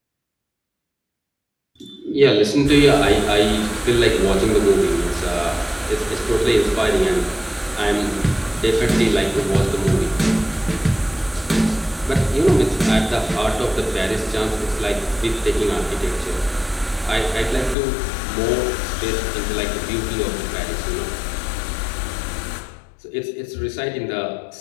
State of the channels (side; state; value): right; drops out; at 17.8 s